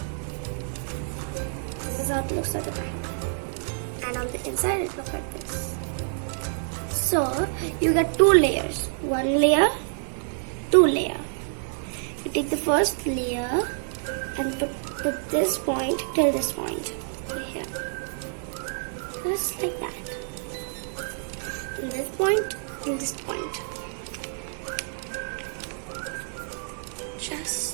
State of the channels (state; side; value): silent; left; digital silence